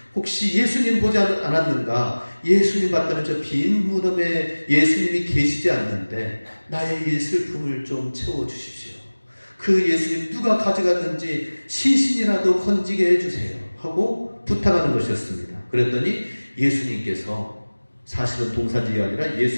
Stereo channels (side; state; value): both; inverted; correlation -1.00